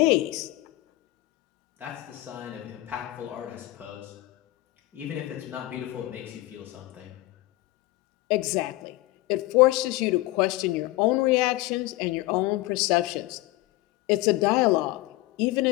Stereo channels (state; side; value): quieter; right; 18.5 dB